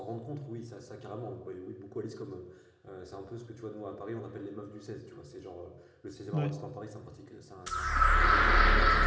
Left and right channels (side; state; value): both; identical; correlation 1.00